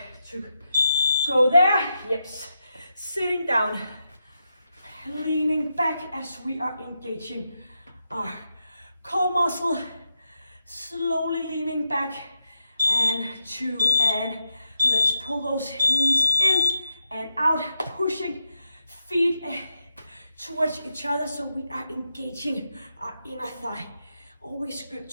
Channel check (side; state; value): both; inverted; correlation -0.86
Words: to go there. Yes, sitting down, leaning back as we are engaging our core muscle, slowly leaning back, and 2, and let's pull those knees in and out, pushing feet towards each other so we are engaging our inner thigh. Always good